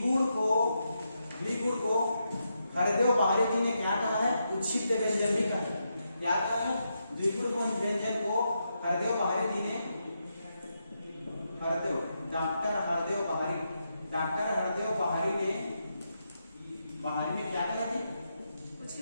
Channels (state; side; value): inverted; both; correlation -0.84